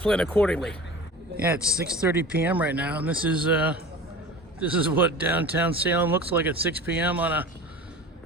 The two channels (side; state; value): both; normal; correlation 0.36